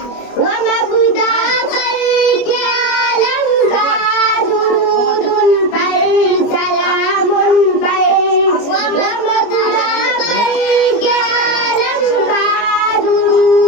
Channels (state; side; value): late; right; 25 ms